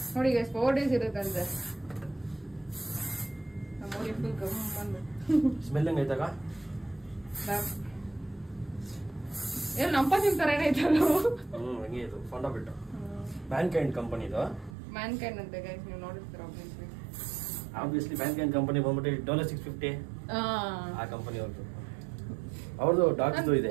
ನೋಡಿ ಗೈಸ್ 4 days ಇರುತ್ತಂತೆ. ನಮ್ಮೂರಿಗೆ ಫುಲ್ ಗಮ್ ಬಂದ್ಬಿಟ್ಟು ಸ್ಮೆಲ್ ಹೆಂಗ್ ಐತಾಗ? ಏನು ನಮ್ಮ ಪರ್ಫ್ಯೂಮ್ ತರನೇ ಐತಲ್ಲ. ಹಂಗೆ ಇದು ಫೌಂಡಾ ಪೆಟ್ಟು ಮ್ಯಾನ್ಕೈಂಡ್ ಕಂಪನಿದು. ಮ್ಯಾನ್ಕೈಂಡ್ ಅಂತ ಗೈಸ್ ನೀವು ನೋಡಿರ್ತೀರ ಆಬ್ವಿಯಸ್ಲಿ. ಮ್ಯಾನ್ಕೈಂಡ್ ಕಂಪನಿ ಬಂದ್ಬಿಟ್ಟು $650 ಆ ಕಂಪನಿ ಅವ್ರದ್ದು ಡಾಗ್ಸ್ ಇದೆ.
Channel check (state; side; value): drops out; left; at 14.8 s